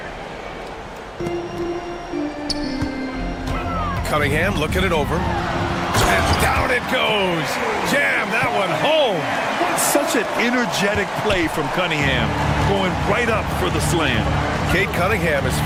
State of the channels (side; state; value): both; identical; correlation 1.00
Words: Cunningham looking it over. And down it goes. Jam that one home. Such an energetic play from Cunningham, going right up for the slam. Cade Cunningham has